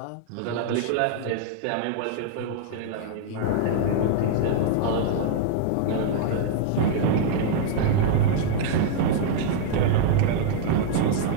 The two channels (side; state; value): both; different; correlation -0.01